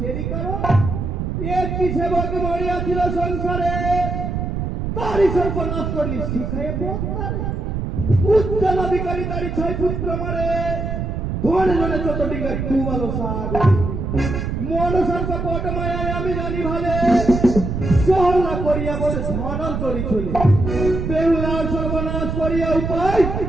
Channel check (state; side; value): noise; right; rumble, 3 dB below the sound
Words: করো। একটি সেবক মরিয়াছিল সংসারে, তারই সর্বনাশ করলি শিখায় পদ্মারে। উচ্চালাধিকারী তারই 6 পুত্র মারে, ধনে ধনে 14 ডিঙ্গা ডুবালো সাগরে। মনসার কপট মায়ায় আমি জানি ভালে, সহলা করিয়া বলে ধনন্তরী চলে। বেহুলার সর্বনাশ করিয়া উপায়,